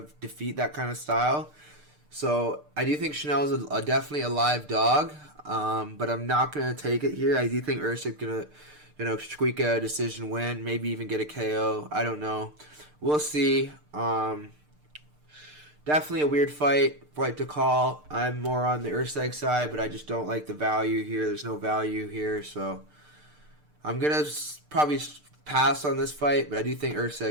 defeat that kind of style. So I do think Schnell's definitely a live dog, but I'm not going to take it here. I do think Erceg's going to squeak a decision win, maybe even get a KO. I don't know. We'll see. Definitely a weird fight to call. I'm more on the Erceg side, but I just don't like the value here. There's no value here, so I'm going to probably pass on this fight, but I do think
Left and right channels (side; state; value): left; late; 6.7 ms